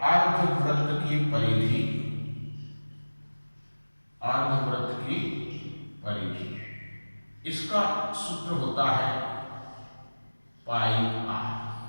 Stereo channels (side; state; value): both; inverted; correlation -1.00